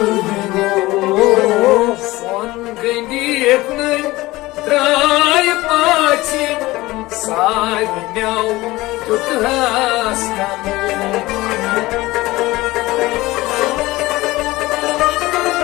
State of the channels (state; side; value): quieter; right; 19.4 dB